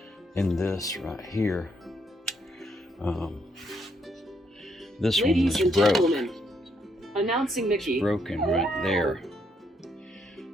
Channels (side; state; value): both; normal; correlation 0.74